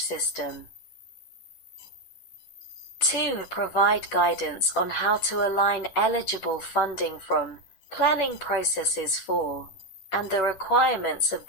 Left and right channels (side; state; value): right; late; 11 ms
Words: system. 2. Provide guidance on how to align eligible funding from planning processes for and the requirements of